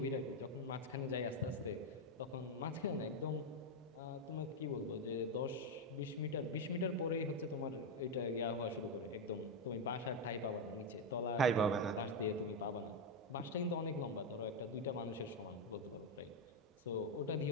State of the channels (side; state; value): both; normal; correlation 0.05